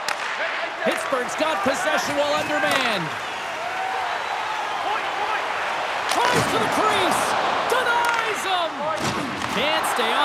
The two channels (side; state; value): both; identical; correlation 1.00